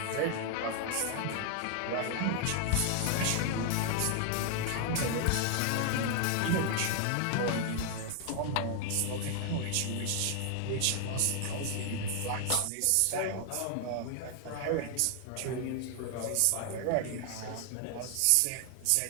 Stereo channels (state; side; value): different; both; correlation 0.00